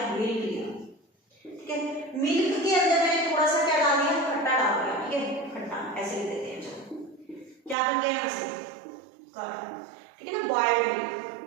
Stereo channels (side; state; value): left; drops out; at 7.8 s